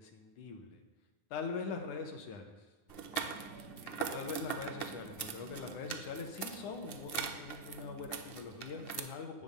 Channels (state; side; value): late; right; 9.7 ms